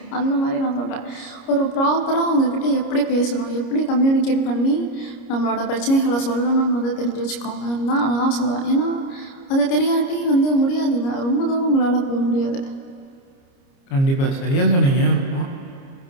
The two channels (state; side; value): late; right; 29 ms